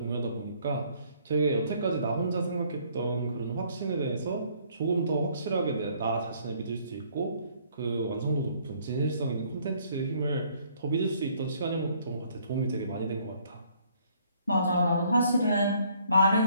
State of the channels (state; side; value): inverted; both; correlation -0.63